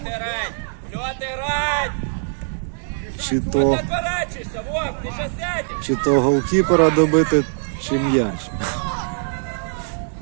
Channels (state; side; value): silent; left; digital silence